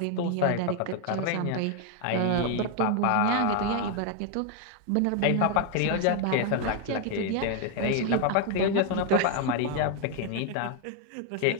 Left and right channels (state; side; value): different; both; correlation 0.00